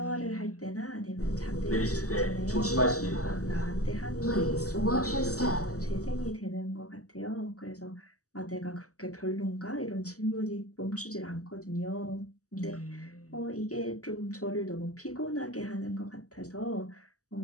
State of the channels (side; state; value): right; late; 0.66 ms